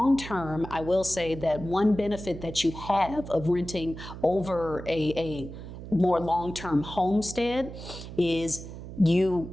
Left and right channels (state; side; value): noise; right; hum, 11 dB below the sound